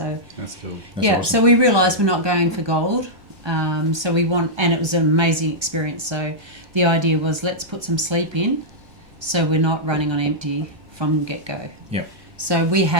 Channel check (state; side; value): late; left; 1.3 ms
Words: That's cool. That's yeah. awesome. So we realised we're not going for gold, so we want, and it was an amazing experience. So the idea was, let's put some sleep in, so we're not running on empty from get go. Yep. So we